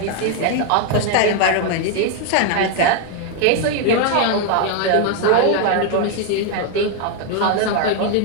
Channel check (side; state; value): both; different; correlation 0.01